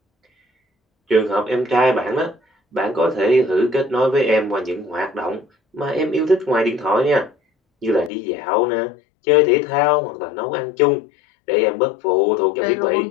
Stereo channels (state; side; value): drops out; right; at 8.1 s